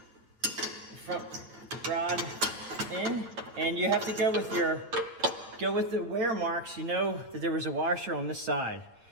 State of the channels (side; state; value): left; late; 8.6 ms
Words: front rod in, and you have to go with the wear marks. You know that there was a washer on this side,